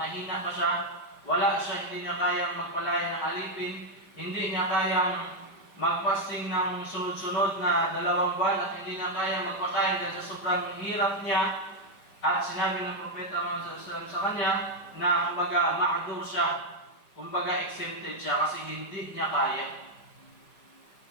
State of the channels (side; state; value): right; late; 5.1 ms